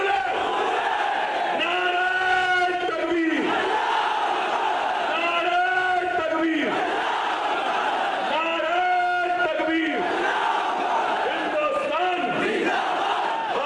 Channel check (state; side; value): identical; both; correlation 1.00